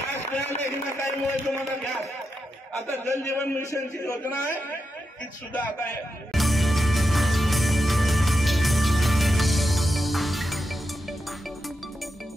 मिळाले हिनाताईमुळे तुम्हाला गॅस. आता जल जीवन मिशनची योजना आहे ती सुद्धा आता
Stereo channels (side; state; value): both; normal; correlation 0.87